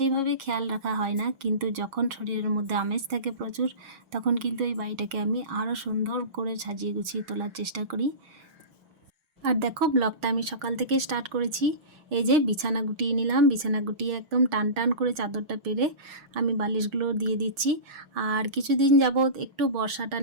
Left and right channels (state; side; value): late; left; 6.4 ms